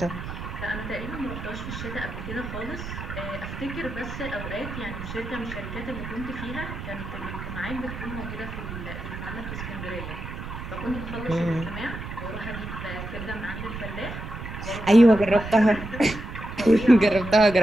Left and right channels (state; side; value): noise; right; rumble, 8 dB below the sound